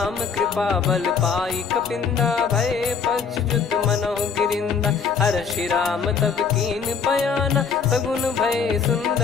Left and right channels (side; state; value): right; quieter; 6.0 dB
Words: कृपा बल पाई कपिंदा भय पक्ष जुत मनो गिरिंदा। हर्षि राम तब कीन पयाना सगुन भय